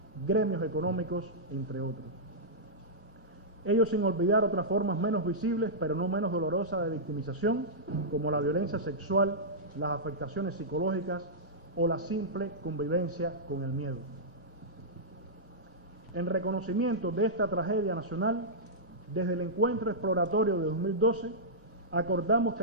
gremios económicos, entre otros. Ello sin olvidar otras formas menos visibles, pero no menos dolorosas de victimización, como la violencia sexual, las afectaciones psicológicas o la simple convivencia con el miedo. En reconocimiento de esta tragedia nacional, desde el encuentro exploratorio de 2012, acordamos que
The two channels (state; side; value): normal; both; correlation -0.13